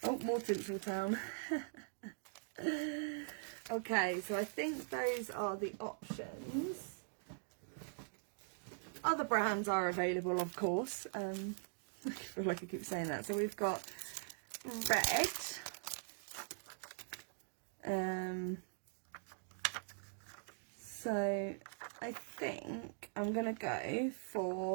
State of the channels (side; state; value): left; silent; digital silence